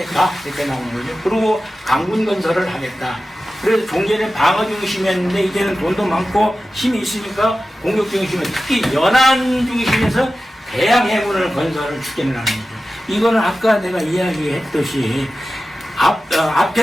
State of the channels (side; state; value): both; normal; correlation 0.94